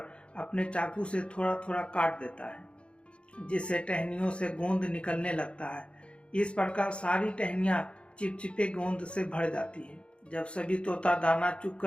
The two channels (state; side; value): late; right; 0.058 ms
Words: अपने चाकू से थोड़ा थोड़ा काट देता है, जिससे टहनियों से गोंद निकलने लगता है। इस प्रकार सारी टहनियां चिपचिपे गोंद से भर जाती है। जब सभी तोता दाना